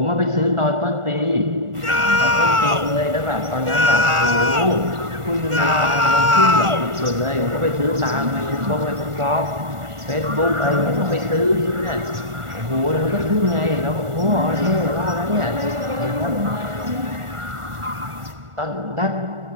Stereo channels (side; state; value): left; late; 1.4 ms